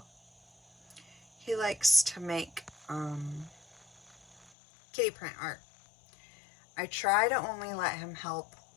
He likes to make kitty print art. I try to only let him help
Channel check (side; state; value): right; drops out; at 4.5 s